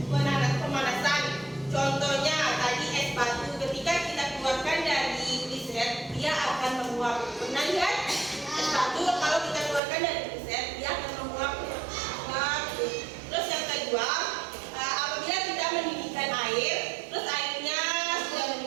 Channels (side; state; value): left; drops out; at 9.8 s